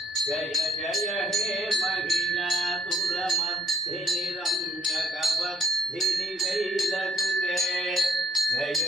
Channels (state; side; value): normal; both; correlation 0.60